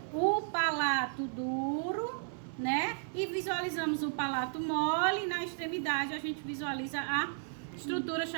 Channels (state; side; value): silent; left; 55 dB below the other